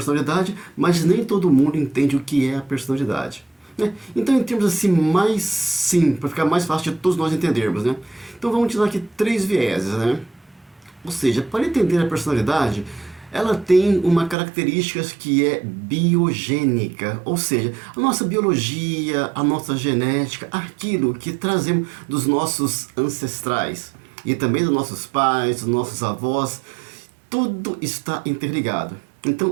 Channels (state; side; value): drops out; left; at 14.4 s